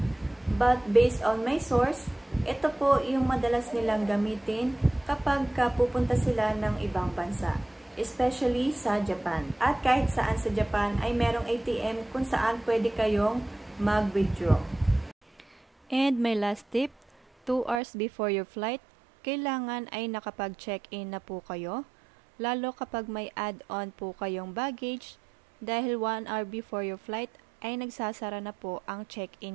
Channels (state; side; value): drops out; left; at 17.8 s